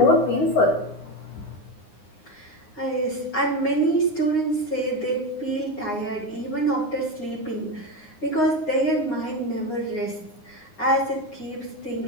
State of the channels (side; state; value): right; late; 9.6 ms